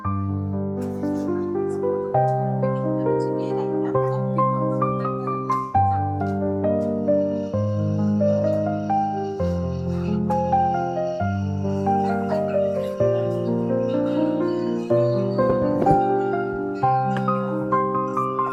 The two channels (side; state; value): both; identical; correlation 1.00